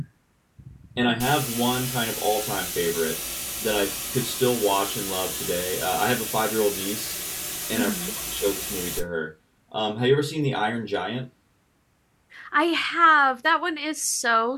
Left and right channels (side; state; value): both; identical; correlation 1.00